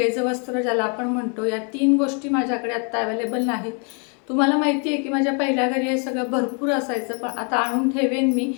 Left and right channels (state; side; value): quieter; right; 38.1 dB